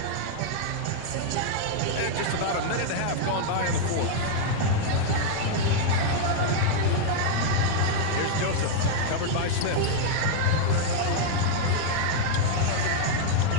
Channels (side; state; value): both; different; correlation -0.01